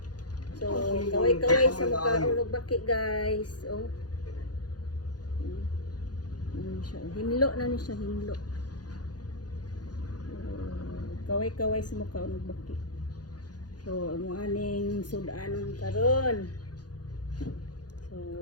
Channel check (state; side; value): late; right; 0.69 ms